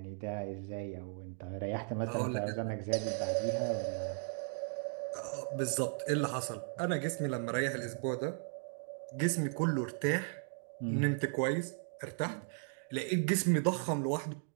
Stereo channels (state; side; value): silent; left; 54 dB below the other